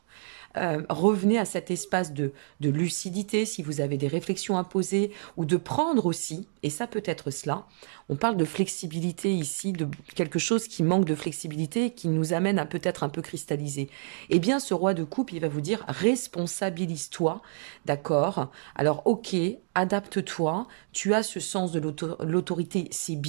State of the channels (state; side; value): silent; left; digital silence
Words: Revenez à cet espace de lucidité si vous avez des réflexions à poser ou de prendre aussi, et ça peut être cela. On parle de flexibilité ici, de quelque chose qui manque de flexibilité, qui nous amène à peut-être un peu cristalliser. Eh bien, ce roi de coupe, il va vous dire responsabilise-toi, d'accord? Alors, ok, adapte-toi, tu as ce sens de l'autorité, c'est